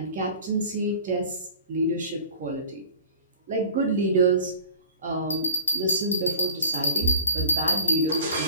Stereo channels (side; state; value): both; inverted; correlation -0.43